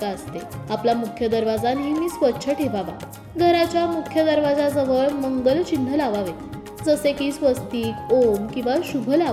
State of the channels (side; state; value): both; identical; correlation 1.00